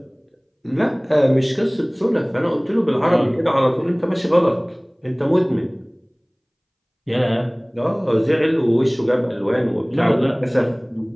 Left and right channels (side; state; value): both; identical; correlation 1.00